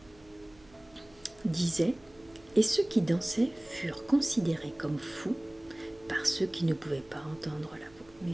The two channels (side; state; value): right; noise; hum, 27 dB below the sound